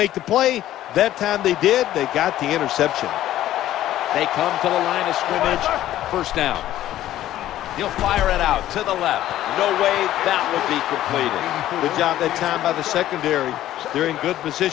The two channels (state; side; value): quieter; right; 13.4 dB